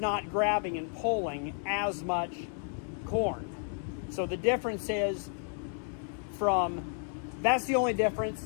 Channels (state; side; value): silent; right; 56 dB below the other